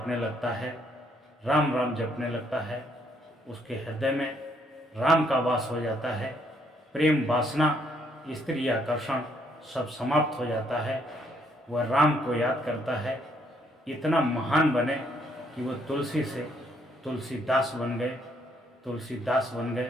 लगता है, राम राम जपने लगता है। उसके हृदय में राम का वास हो जाता है। प्रेम वासना, स्त्री आकर्षण सब समाप्त हो जाता है। वह राम को याद करता है, इतना महान बने कि वो तुलसी से तुलसीदास बन गए, तुलसीदास बन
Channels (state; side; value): normal; both; correlation 0.69